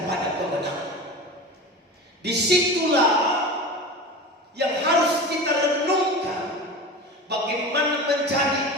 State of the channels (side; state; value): both; normal; correlation 0.31